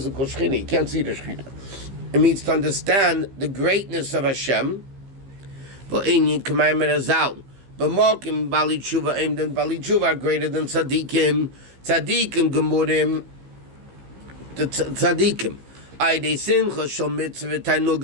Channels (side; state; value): left; late; 15 ms